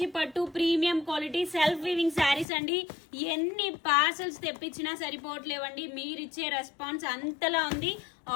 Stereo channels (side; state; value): right; drops out; at 2.5 s